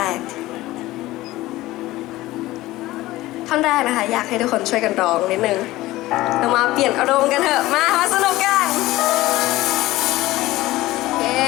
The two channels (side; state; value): right; quieter; 17.5 dB